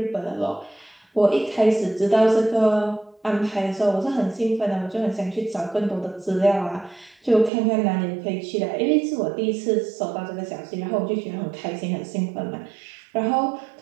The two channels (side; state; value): left; drops out; at 7.5 s